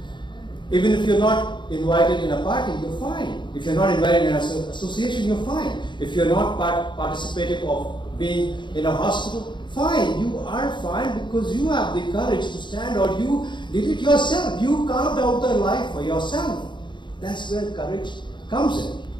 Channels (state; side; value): late; right; 0.23 ms